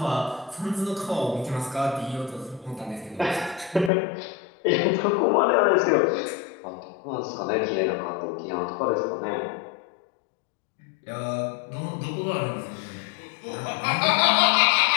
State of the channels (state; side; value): drops out; right; at 3.9 s